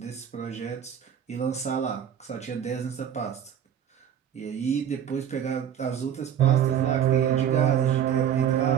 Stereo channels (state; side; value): quieter; left; 9.2 dB